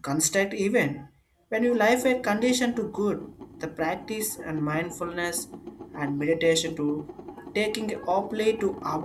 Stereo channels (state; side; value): identical; both; correlation 1.00